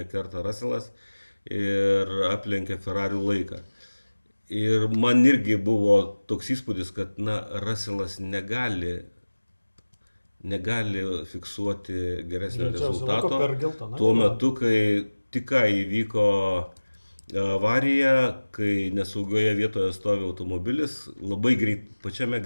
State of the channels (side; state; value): both; inverted; correlation -1.00